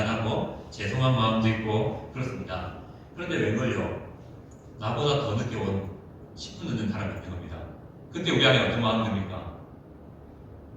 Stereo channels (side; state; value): both; identical; correlation 1.00